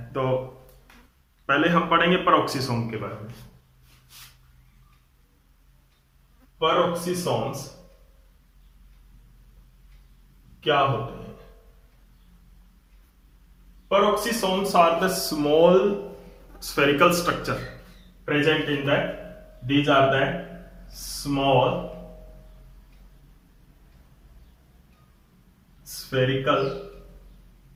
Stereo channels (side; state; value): both; identical; correlation 1.00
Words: तो पहले हम पढ़ेंगे पेरोक्सिसोम के बारे में। पेरोक्सिसोम्स क्या होते हैं? Peroxisomes are the small spherical structure present in the, these are the small spherical